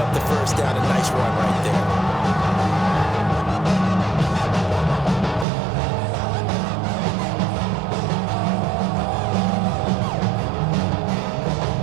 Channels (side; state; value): left; drops out; at 5.5 s